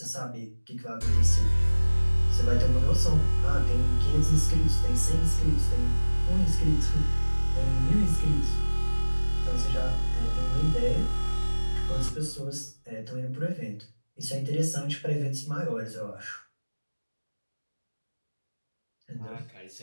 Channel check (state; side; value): inverted; both; correlation -1.00